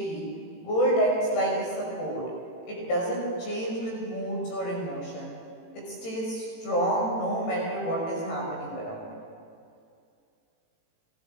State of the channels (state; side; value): late; right; 18 ms